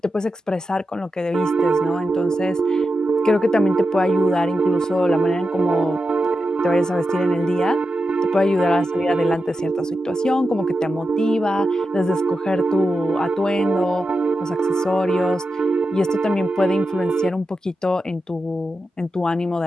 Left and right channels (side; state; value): both; normal; correlation 0.89